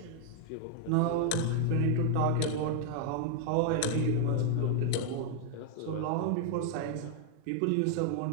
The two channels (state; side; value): different; both; correlation 0.00